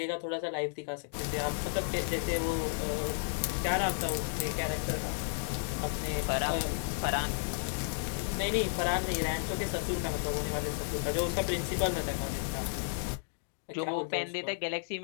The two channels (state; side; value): silent; right; digital silence